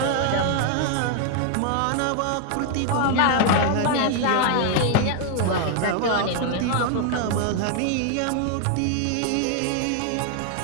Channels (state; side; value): different; both; correlation 0.00